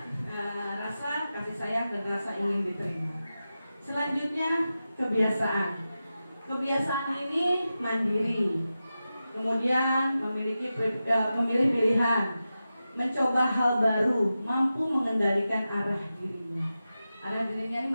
rasa kasih sayang dan rasa ingin diterima. Selanjutnya kebiasaan. Kebiasaan ini mandiri, kemudian memilih pilihan, mencoba hal baru, mampu mengendalikan arah dirinya. Arah dirinya ini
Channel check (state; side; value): inverted; both; correlation -0.92